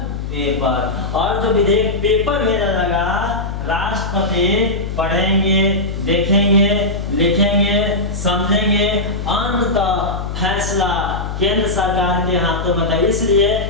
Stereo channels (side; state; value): left; noise; hum, 6 dB below the sound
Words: पेपर। और जो विधेयक पेपर भेजा जाएगा, राष्ट्रपति पढ़ेंगे, देखेंगे, लिखेंगे, समझेंगे, अंततः फैसला केंद्र सरकार के हाथों में था। इसलिए